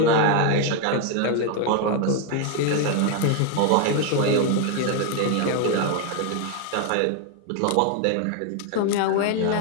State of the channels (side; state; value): both; different; correlation 0.01